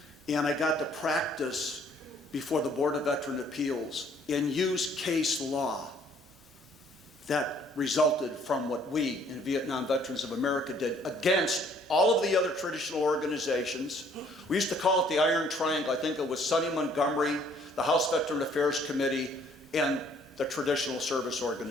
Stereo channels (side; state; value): both; normal; correlation 0.61